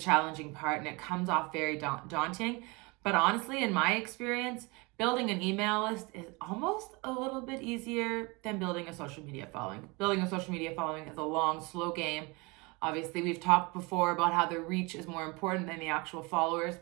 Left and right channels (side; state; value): left; quieter; 26.9 dB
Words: part and it comes off very daunting. But honestly, in my experience, building an email list is almost a little bit easier than building a social media following. Building a social media following is a long, slow game. Obviously, we've talked before about how the reach is more important than the actual followers,